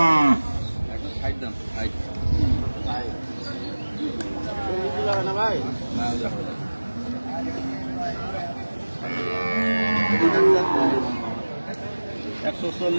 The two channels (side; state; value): both; inverted; correlation -1.00